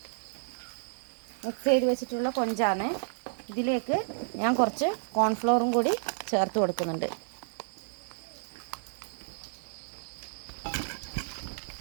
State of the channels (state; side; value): silent; left; digital silence